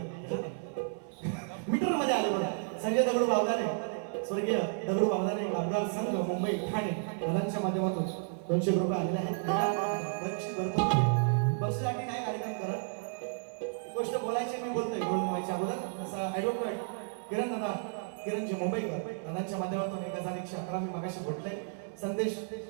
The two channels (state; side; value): silent; left; 56 dB below the other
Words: मीटर मध्ये आलं बघा संजय दगडू बावदाने स्वर्गीय दगडू बावदाने कामगार संघ मुंबई ठाणे दादांच्या माध्यमातून 200 रुपये आलेले आहेत बक्षीसाठी काय कार्यक्रम करत गोष्ट बोलायची मी बोलतोय बोलून व्हायच्या अगोदर जसा ऍडव्होकेट किरणजी मुंबईकर दादांच्या माध्यमातून 1111 मी मागाशी भेटले संदेश